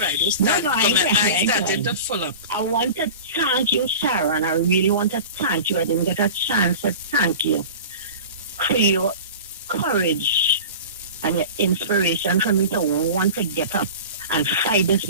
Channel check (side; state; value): both; inverted; correlation -0.35